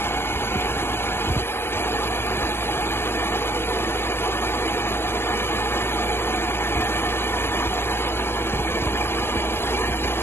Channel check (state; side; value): late; right; 0.11 ms